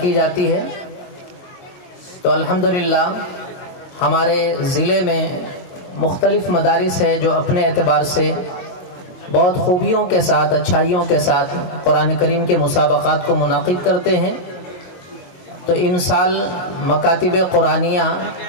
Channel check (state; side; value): late; right; 22 ms